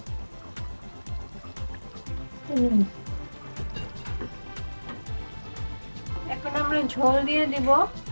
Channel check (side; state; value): both; inverted; correlation -1.00